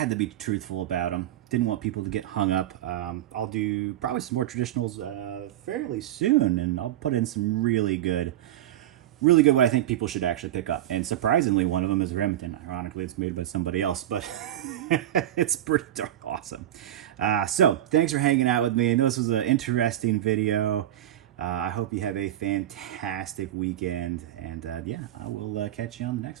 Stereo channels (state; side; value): quieter; left; 12.6 dB